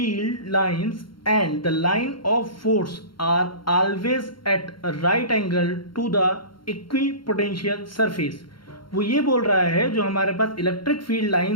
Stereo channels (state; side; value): late; right; 0.73 ms